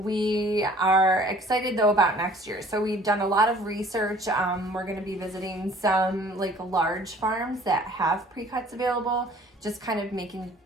are excited though about next year. So we've done a lot of research. We're going to be visiting some like large farms that have pre-cuts available, just kind of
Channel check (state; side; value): normal; both; correlation 0.52